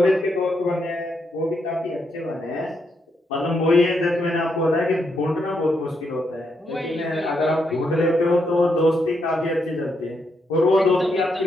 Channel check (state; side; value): normal; both; correlation 0.79